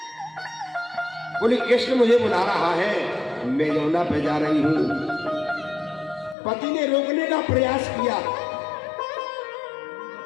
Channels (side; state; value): right; drops out; at 6.4 s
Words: बोली कृष्ण मुझे बुला रहा है, मैं यमुना पे जा रही हूं। पति ने रोकने का प्रयास किया,